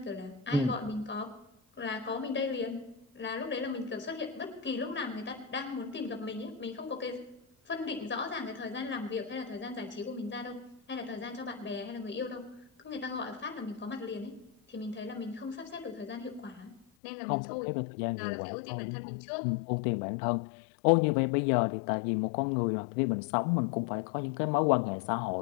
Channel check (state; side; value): drops out; right; at 16.9 s